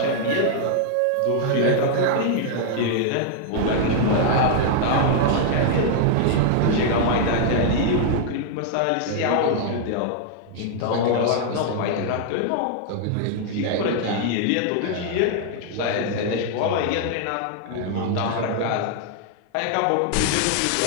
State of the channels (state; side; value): different; both; correlation -0.01